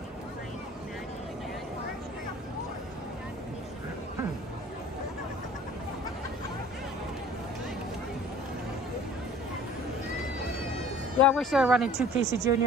Yeah, I wish they were running 2 Casey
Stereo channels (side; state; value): both; normal; correlation 0.48